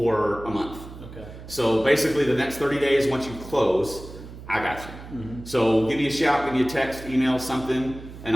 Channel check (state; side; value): noise; right; hum, 14 dB below the sound